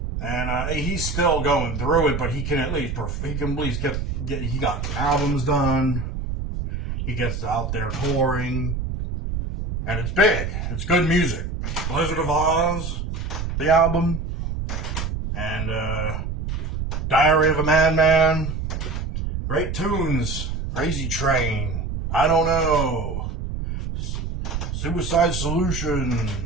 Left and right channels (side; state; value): right; noise; rumble, 4 dB below the sound